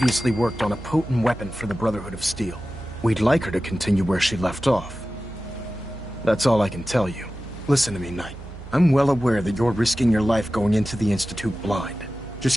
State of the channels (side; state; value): right; noise; hum, 14 dB below the sound